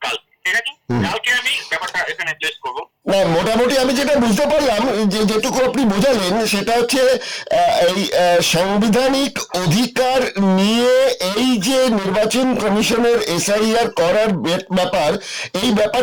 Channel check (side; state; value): both; identical; correlation 1.00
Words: কালকে, ঠিক আছে, কালকে আমি ব্যাপারটা এখানে প্লেস করবো। না, মোটামুটি আমি যেটা বুঝতে পারলাম, যে যেটুকু আপনি বোঝালেন সেটা হচ্ছে এই সাংবিধানিক অধিকার নিয়ে এই যে নির্বাচন কমিশনের SIR করার ব্যাপার, এই